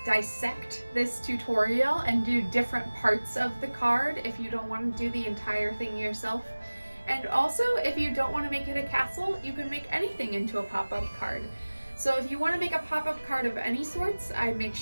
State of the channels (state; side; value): inverted; both; correlation -1.00